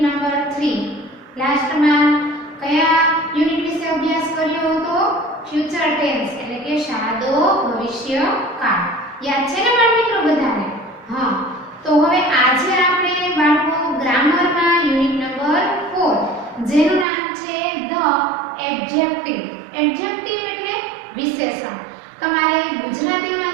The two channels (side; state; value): left; drops out; at 17.1 s